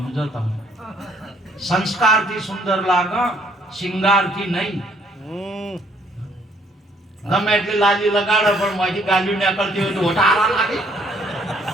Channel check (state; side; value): normal; both; correlation 0.64